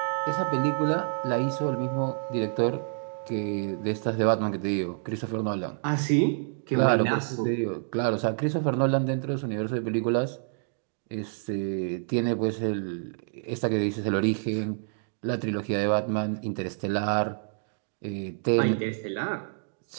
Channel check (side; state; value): left; silent; digital silence